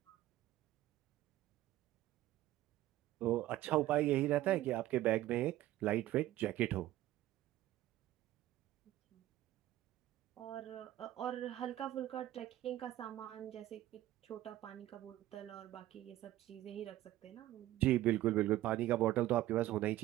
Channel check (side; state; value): left; quieter; 14.8 dB